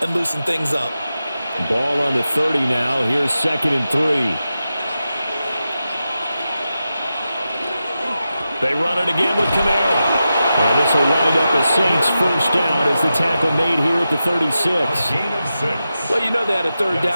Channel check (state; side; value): inverted; both; correlation -0.91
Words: and loosen things up. Ball on the 30 now. Here's second and 3. They run it again with Kamara. And this will wind up a Saints first down as the tackle made here at the 36. Well, you know they had a third